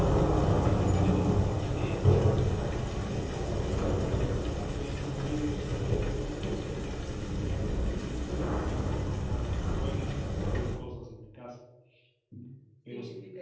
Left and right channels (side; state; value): both; identical; correlation 1.00